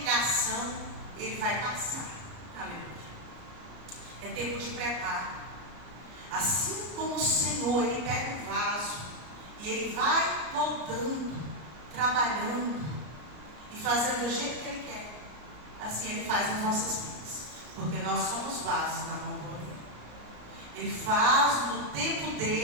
ele vai passar. Aleluia. É tempo de preparo. Assim como o Senhor, Ele pega um vaso e Ele vai moldando, trabalhando e fazendo do jeito que Ele quer, assim Ele faz nas nossas vidas, porque nós somos vasos na mão dele. Ele faz no tempo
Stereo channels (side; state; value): left; late; 33 ms